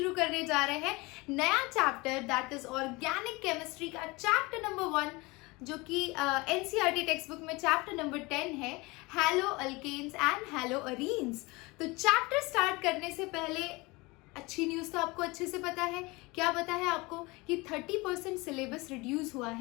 करने जा रहे हैं नया chapter that is organic chemistry का चैप्टर नंबर 1 जो कि एनसीईआरटी टेक्स्ट बुक में चैप्टर नंबर 10 है, halo alkanes and halo arenes. तो चैप्टर स्टार्ट करने से पहले अच्छी न्यूज़ तो आपको अच्छे से पता है। क्या पता है आपको कि 30% सिलेबस रिड्यूस हुआ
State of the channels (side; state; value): right; quieter; 24.1 dB